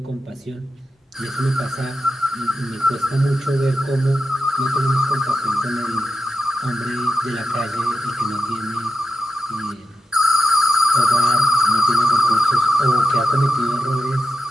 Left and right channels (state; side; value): normal; both; correlation 0.88